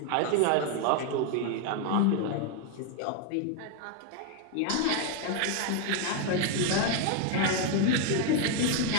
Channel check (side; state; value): both; different; correlation 0.01